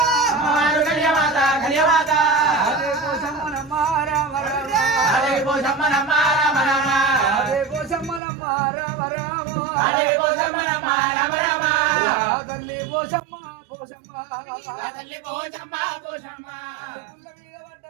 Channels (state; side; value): drops out; left; at 8.2 s